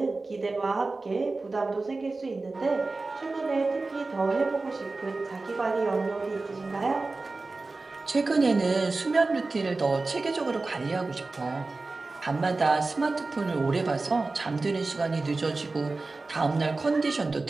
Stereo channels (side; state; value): left; quieter; 3.5 dB